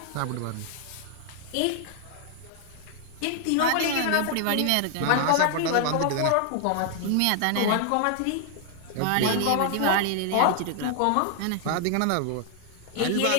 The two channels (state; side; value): different; both; correlation 0.00